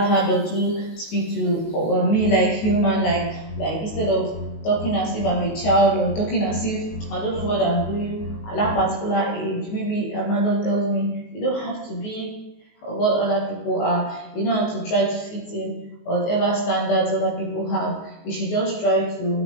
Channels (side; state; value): right; late; 19 ms